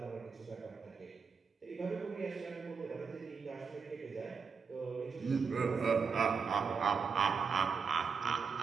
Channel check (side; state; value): left; quieter; 5.6 dB